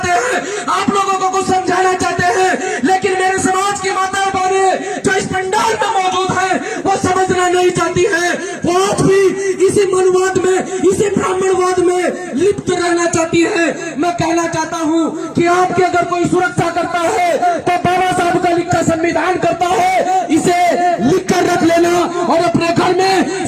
हैं, आप लोगों को कुछ समझाना चाहते हैं। लेकिन मेरे समाज की माताएं बहनें जो इस पंडाल में मौजूद हैं, वो समझना नहीं चाहती है, वो आज भी इसी मनुवाद में, इसी ब्राह्मणवाद में लिप्त रहना चाहती है। मैं कहना चाहता हूँ कि आपकी अगर कोई सुरक्षा करता है तो बाबा साहब का लिखा संविधान करता है, इसे लिख कर रख लेना और अपने घर में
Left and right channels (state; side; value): identical; both; correlation 1.00